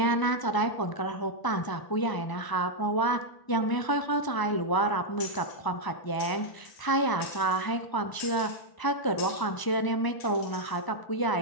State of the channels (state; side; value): late; right; 1.0 ms